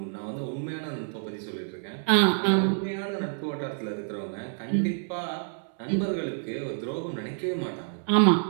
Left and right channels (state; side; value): silent; left; 59 dB below the other